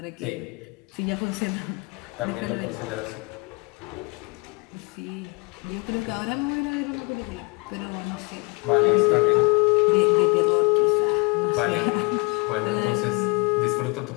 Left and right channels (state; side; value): quieter; right; 29.2 dB